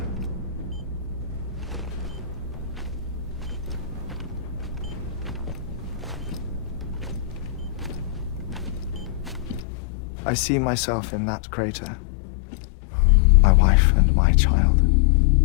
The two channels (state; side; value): drops out; right; at 9.7 s